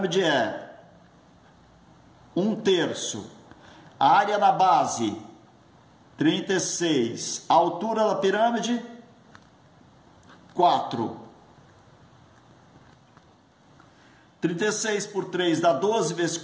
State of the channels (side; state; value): both; identical; correlation 1.00